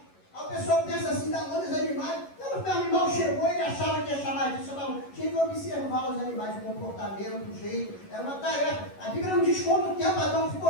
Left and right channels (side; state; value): right; late; 11 ms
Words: Aí o pessoal pensa assim, dar nome aos animais. Quando o animal chegou, ele achava que ia chamar disso. Tinha que observar os animais, o comportamento, o jeito. Era uma tarefa. A Bíblia não diz quanto tempo Adão